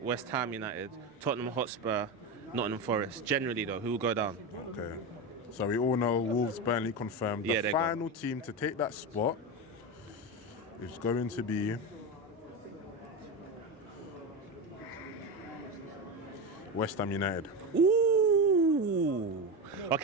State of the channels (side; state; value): both; normal; correlation 0.18